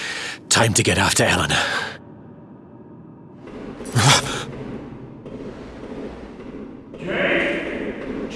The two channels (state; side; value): identical; both; correlation 1.00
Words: Time to get after Eleanor.